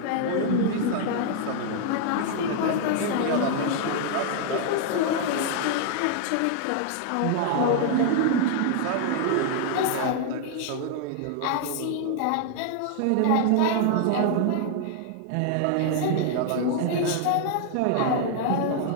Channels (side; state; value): both; different; correlation 0.00